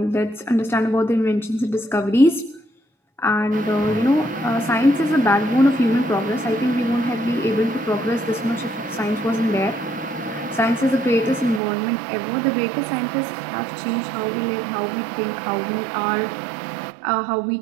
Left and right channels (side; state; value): left; drops out; at 11.6 s